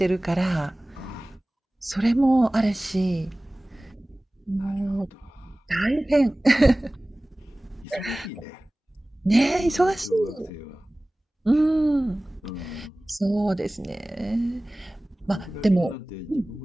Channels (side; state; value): both; normal; correlation 0.98